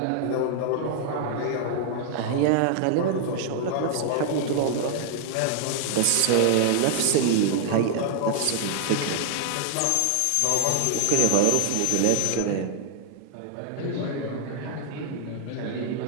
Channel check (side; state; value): both; different; correlation 0.00